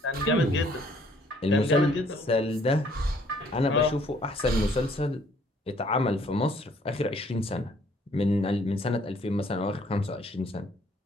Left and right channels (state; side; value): normal; both; correlation 0.62